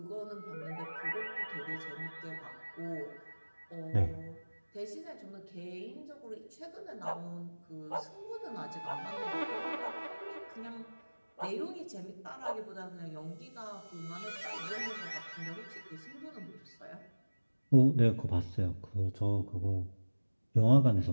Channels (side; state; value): both; inverted; correlation -1.00